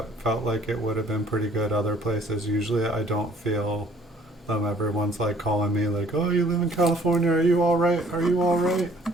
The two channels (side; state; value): both; normal; correlation 0.58